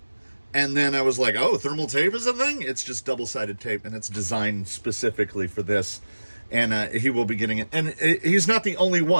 and then I was like, oh, thermal tape is a thing? It's just double-sided tape, and it's designed specifically for this. And he will be getting it. And he's not the only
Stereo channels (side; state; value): both; inverted; correlation -1.00